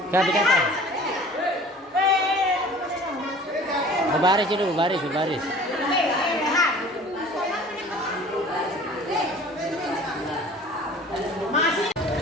Dikata. Baris dulu, baris.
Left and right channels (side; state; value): both; normal; correlation 0.46